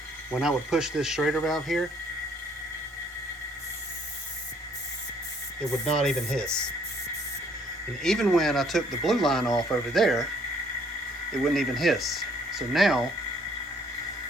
when I would push this Schrader valve here, it would not even hiss. And even when I took the blue line off over there, it wouldn't even hiss. So now,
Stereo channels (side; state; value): both; normal; correlation 0.64